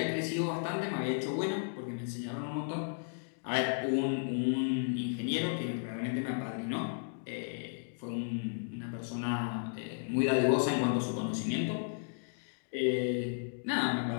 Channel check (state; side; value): silent; right; digital silence